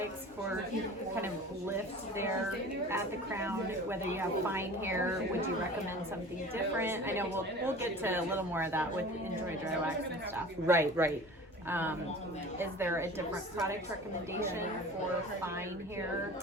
for kind of lift there at the crown? Whether you have fine hair, would you recommend something different? I know we'll get to a little more of that with Enjoy Dry Wax and stuff. right. Is there a different product recommendation for fine hair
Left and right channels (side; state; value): both; normal; correlation 0.40